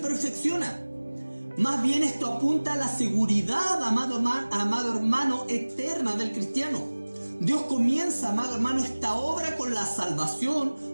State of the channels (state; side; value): inverted; both; correlation -1.00